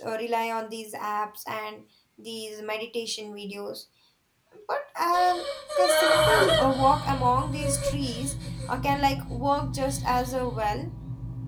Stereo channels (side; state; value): both; identical; correlation 1.00